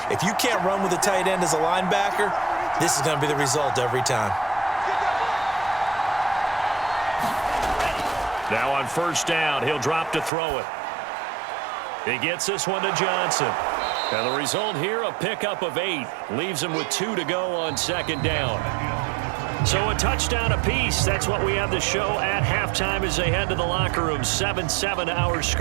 If you can't run with a tight end as a linebacker, this is going to be the result every time. Now on 1st down, he'll drop to throw it. He gets this one to Johnson. And the result here, a pickup of 8. Leaves him with 2 to go on 2nd down. So a touchdown apiece. That's what we have the show at halftime as they head to the locker room. 7-7 our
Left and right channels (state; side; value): drops out; left; at 10.3 s